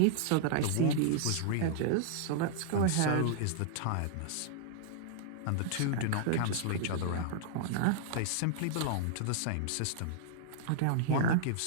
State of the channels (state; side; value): different; both; correlation -0.01